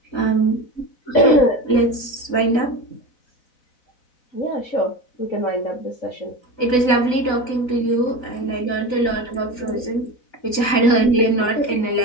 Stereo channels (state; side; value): late; right; 4.0 ms